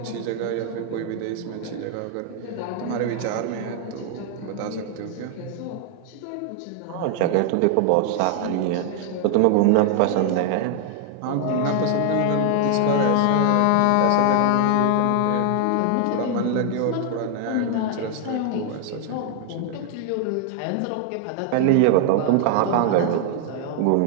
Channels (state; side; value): different; both; correlation 0.00